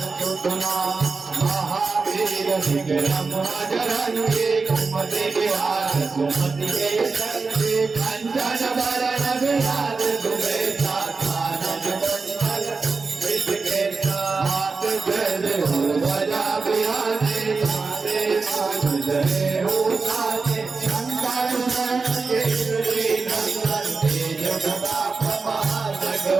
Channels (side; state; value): left; quieter; 4.4 dB